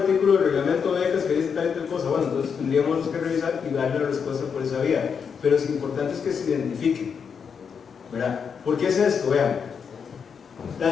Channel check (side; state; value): right; quieter; 6.5 dB